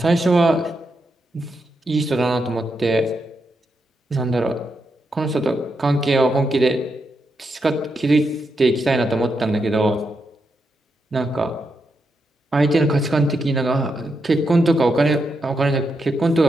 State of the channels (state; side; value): normal; both; correlation 0.84